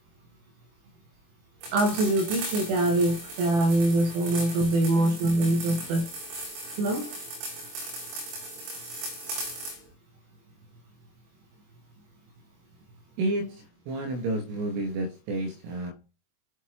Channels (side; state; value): left; late; 24 ms